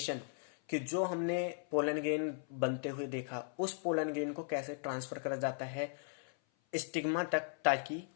कि जो हमने पोलन ग्रेन बनते हुए देखा उस पोलन ग्रेन को कैसे ट्रांसफर करा जाता है स्टिग्मा तक ताकि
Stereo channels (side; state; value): right; silent; 53 dB below the other